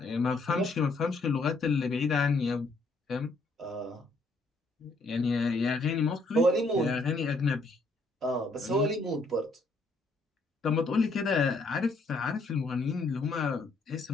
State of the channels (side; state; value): right; quieter; 3.2 dB